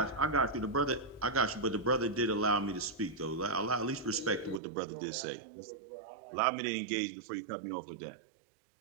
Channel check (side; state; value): left; drops out; at 4.6 s